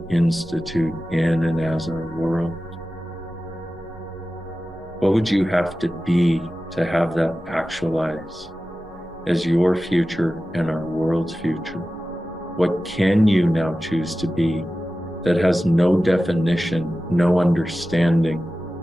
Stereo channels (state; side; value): noise; right; rumble, 25 dB below the sound